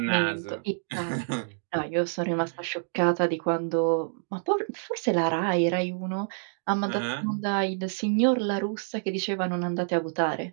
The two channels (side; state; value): left; silent; digital silence